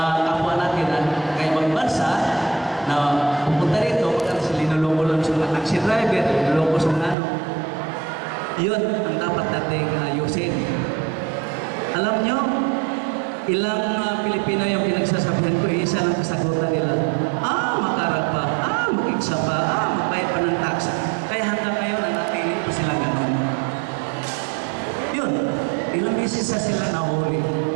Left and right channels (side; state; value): left; drops out; at 7.2 s